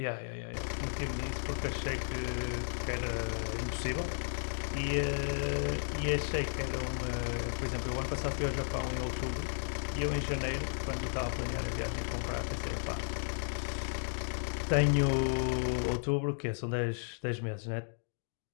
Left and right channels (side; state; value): right; silent; digital silence